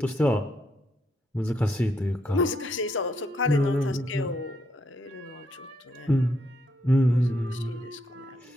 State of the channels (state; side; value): normal; both; correlation 0.77